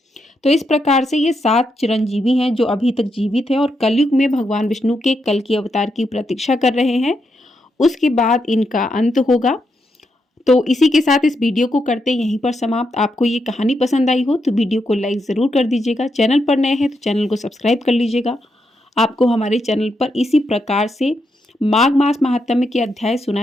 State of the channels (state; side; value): normal; both; correlation 0.82